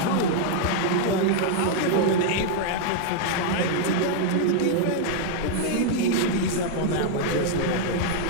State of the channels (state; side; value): different; both; correlation 0.00